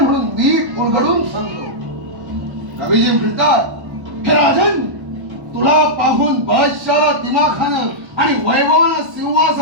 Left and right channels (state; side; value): late; left; 1.1 ms